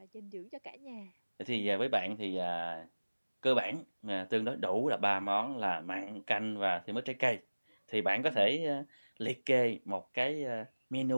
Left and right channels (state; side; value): inverted; both; correlation -1.00